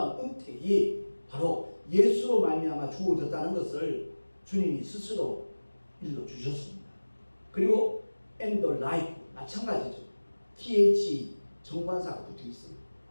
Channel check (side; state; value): both; inverted; correlation -1.00